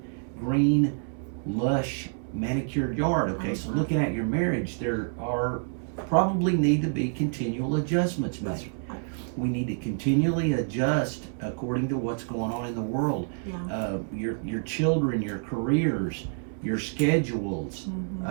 green, lush, manicured yard. Okay, so looking at your marriage, there are probably need to be continual adjustments made. We need to continually adjust according to what's going on in the world. Your children, your careers, your schedules,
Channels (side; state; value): left; silent; 59 dB below the other